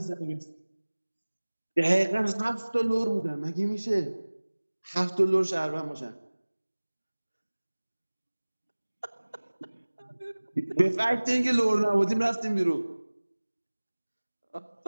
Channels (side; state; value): both; inverted; correlation -1.00